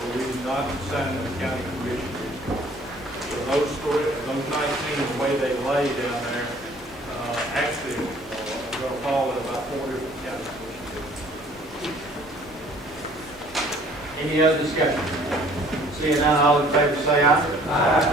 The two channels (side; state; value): both; normal; correlation 0.55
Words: we did not assign them to county commissioners. So those 19, the way they lay down there, actually are going to fall in about 4 different county commissioners. Any other discussion? Seeing none, all in favor say aye.